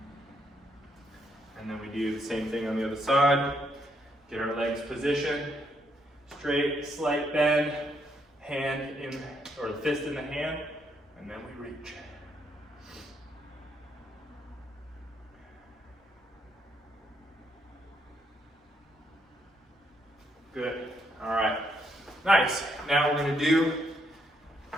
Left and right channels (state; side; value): normal; both; correlation 0.75